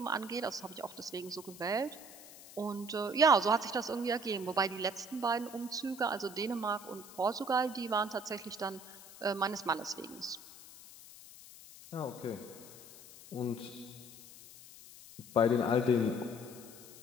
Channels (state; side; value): noise; left; hiss, 17 dB below the sound